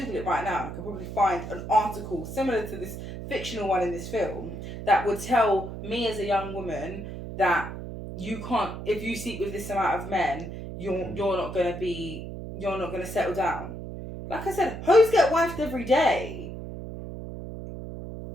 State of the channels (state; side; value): noise; right; hum, 9 dB below the sound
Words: it right now, I could probably find an article similar to this fictional one in this film that would tell me as a young woman that you can't, if you sleep with this amount of men, you're not going to settle down. Like I said, hoes get wifed every day.